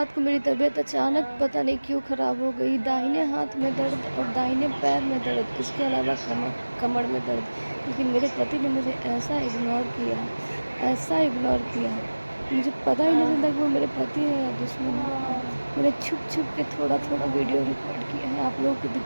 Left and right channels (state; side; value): inverted; both; correlation -1.00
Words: को मेरी तबीयत अचानक पता नहीं क्यों ख़राब हो गई। दाहिने हाथ में दर्द और दाहिने पैर में दर्द, इसके अलावा कमर कमर में दर्द। लेकिन मेरे पति ने मुझे ऐसा इग्नोर किया, मुझे पता ही नहीं चलता कि वो मेरे पति है या दुश्मन है। मैंने छुप छुप के थोड़ा थोड़ा वीडियो रिकॉर्ड किया है आप